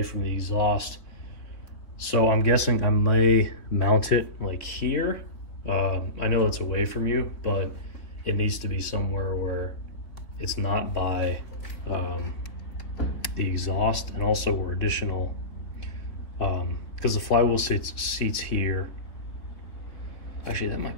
from the exhaust. So I'm guessing I may mount it like here. I know it's away from you, but it needs to be somewhere where it's not by the exhaust, and also where additional, because the flywheel seats here. Actually, that might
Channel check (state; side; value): late; right; 3.4 ms